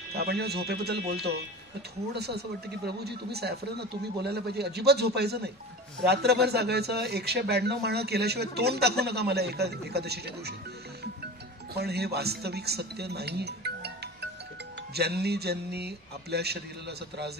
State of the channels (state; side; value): normal; both; correlation 0.33